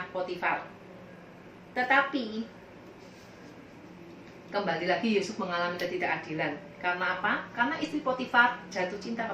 Potifar. Tetapi kembali lagi Yusuf mengalami ketidakadilan. Karena apa? Karena istri Potifar jatuh cinta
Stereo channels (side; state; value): both; identical; correlation 1.00